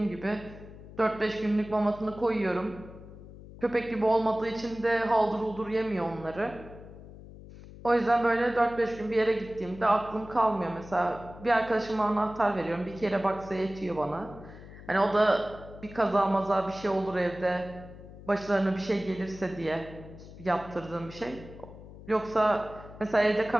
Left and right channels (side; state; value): left; noise; hum, 16 dB below the sound